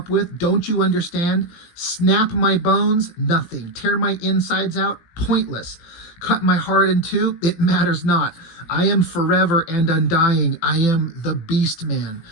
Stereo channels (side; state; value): right; late; 18 ms